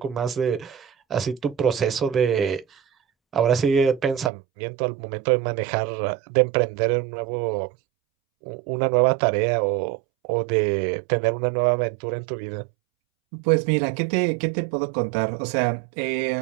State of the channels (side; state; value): left; drops out; at 4.3 s